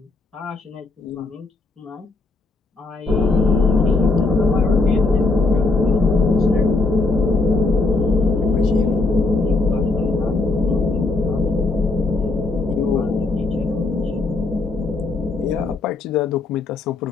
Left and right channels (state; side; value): quieter; right; 3.5 dB